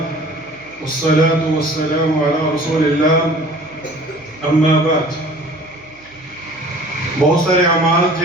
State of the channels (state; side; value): noise; right; hum, 30 dB below the sound